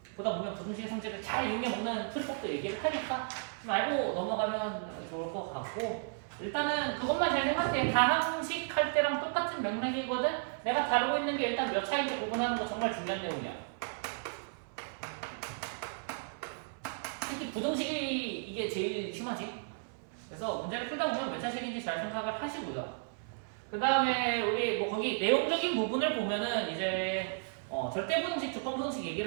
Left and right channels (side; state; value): left; silent; 55 dB below the other